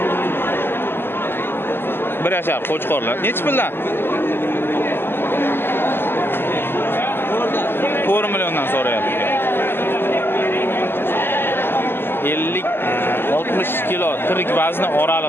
Bir yashar qo'chqorlar. Necha puldan? 4 milliondan so'rayapti. 50 60 kilo tirik vazni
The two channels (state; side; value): late; right; 0.11 ms